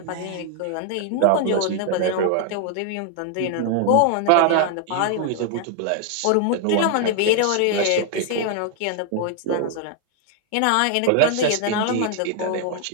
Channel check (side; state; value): both; different; correlation 0.00